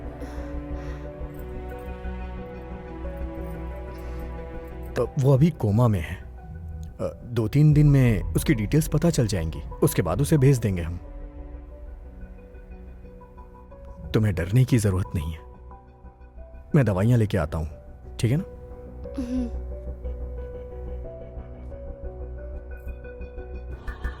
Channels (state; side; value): identical; both; correlation 1.00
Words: तो वो अभी कोमा में है। 2-3 दिन में उसकी डिटेल्स पता चल जाएंगी, उसके बाद उसे भेज देंगे हम। तुम्हें डरने की जरूरत नहीं है, मैं दवाइयां लेके आता हूं, ठीक है ना?